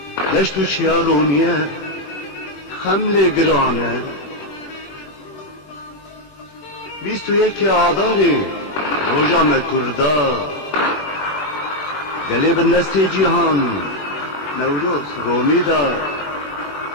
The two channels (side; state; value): right; late; 21 ms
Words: لشتو چیارونیه خمل گرانه 21 آذار روژا مکردا گلی بندسته جیهان نوروز رومی دا